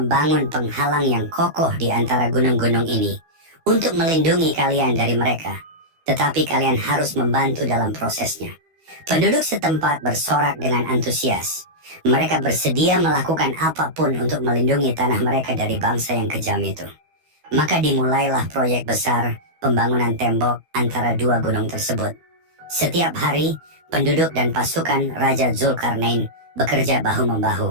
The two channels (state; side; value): late; left; 12 ms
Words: penghalang yang kokoh di antara gunung-gunung ini untuk melindungi kalian dari mereka. Tetapi kalian harus membantu dalam prosesnya. Penduduk setempat bersorak dengan antusias. Mereka bersedia melakukan apapun untuk melindungi tanah mereka dari bangsa yang kejam itu. Maka dimulailah proyek besar pembangunan tembok antara dua gunung tersebut. Setiap hari, penduduk dan pasukan Raja Zulkarnain bekerja